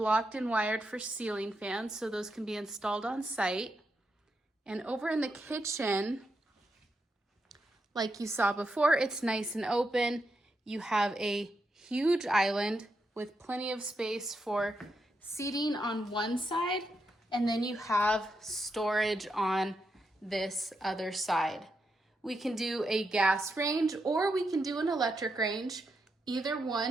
and wired for ceiling fans, so those can be installed on site. And over in the kitchen, like you saw before, it's nice and open. You have a huge island with plenty of space for seating on one side, and then you have storage on this other side. We can do a gas range or we can do an electric range. Either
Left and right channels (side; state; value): both; normal; correlation 0.83